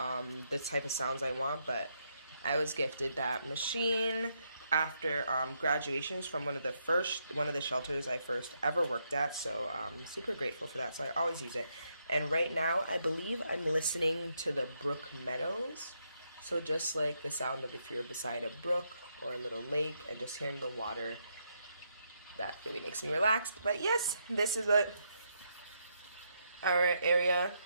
type of sounds I want, but I was gifted that machine after graduations from one of the shelters I first ever worked at, so I'm super grateful for that, so I always use it. And right now I believe I'm listening to the brook meadows, so just like the sound of if you're beside a brook or a little lake and just hearing the water, that really makes me relaxed. But yes, this is what our area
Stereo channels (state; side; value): inverted; both; correlation -0.78